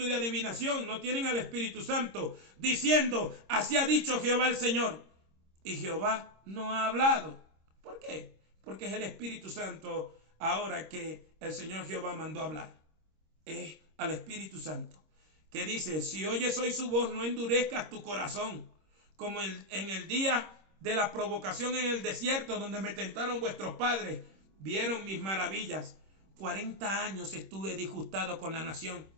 de adivinación, no tienen al Espíritu Santo, diciendo, así ha dicho Jehová el Señor. Y Jehová no ha hablado. ¿Por qué? Porque es el Espíritu Santo ahora que el Señor Jehová mandó hablar. Es al Espíritu Santo, que dice, si oyes hoy su voz, no endurezcas tu corazón, como en el día de la provocación en el desierto, donde me tentaron vuestros padres, vieron mis maravillas. 40 años estuve disgustado con la nación,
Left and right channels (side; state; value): left; late; 26 ms